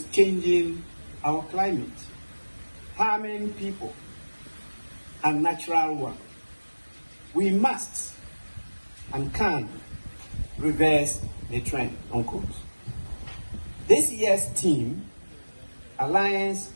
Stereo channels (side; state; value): both; inverted; correlation -1.00